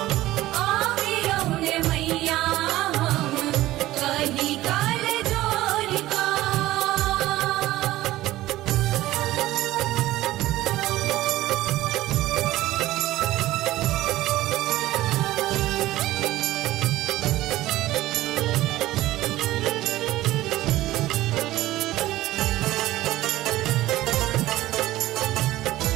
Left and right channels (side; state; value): left; quieter; 16.2 dB